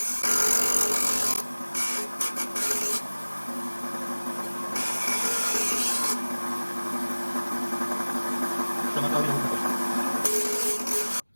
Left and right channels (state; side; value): inverted; both; correlation -1.00